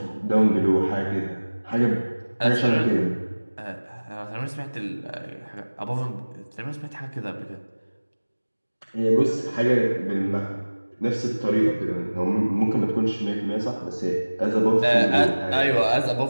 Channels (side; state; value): both; inverted; correlation -1.00